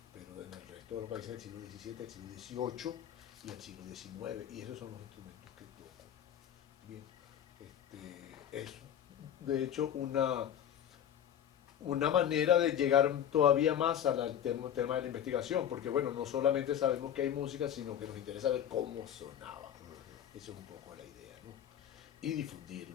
pero en el resto de los países del siglo XVII, el siglo XVIII y el siglo XIX, y esos son los instrumentos que toco. Bien, es de hecho una manera de llegar todavía más al tema de la investigación, porque bueno, no solamente sabemos que hay música, sino que nos interesa ver cómo sonaba. Esa es un poco la idea, ¿no? Y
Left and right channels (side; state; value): right; quieter; 9.8 dB